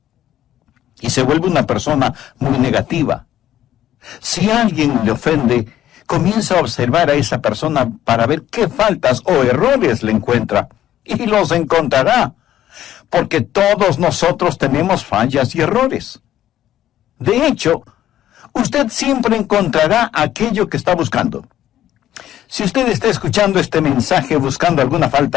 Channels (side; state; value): right; quieter; 12.2 dB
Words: Y se vuelve una persona muy negativa. Si alguien le ofende, comienza a observar a esa persona para ver qué faltas o errores le encuentra. Y los encontrará, porque todos nosotros tenemos fallas y errores. De hecho, usted siempre encontrará aquello que está buscando. Si usted está escuchando este mensaje buscando alguna